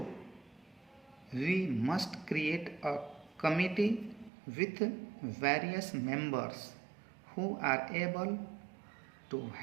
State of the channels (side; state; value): left; drops out; at 4.3 s